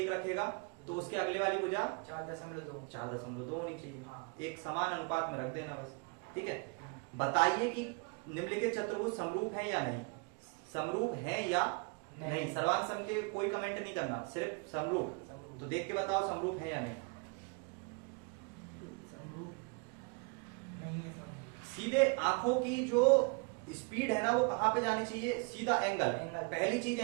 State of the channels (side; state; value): left; quieter; 32.9 dB